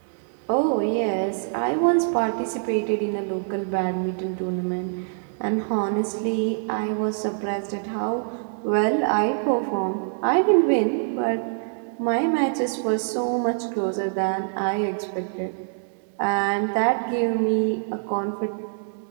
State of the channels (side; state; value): left; silent; digital silence